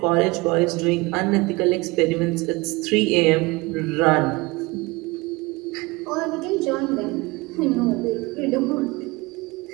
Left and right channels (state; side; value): quieter; left; 23.8 dB